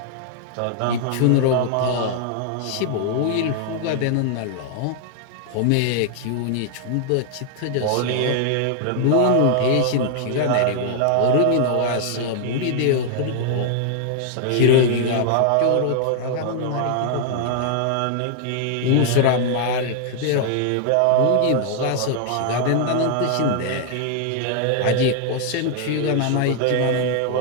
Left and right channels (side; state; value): both; different; correlation 0.00